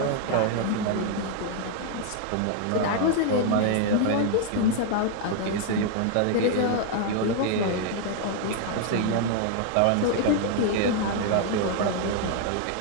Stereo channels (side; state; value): both; different; correlation 0.00